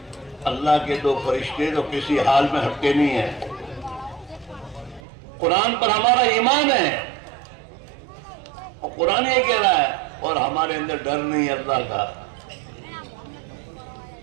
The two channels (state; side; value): drops out; left; at 5.0 s